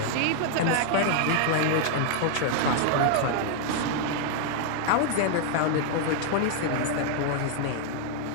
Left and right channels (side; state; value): both; different; correlation 0.00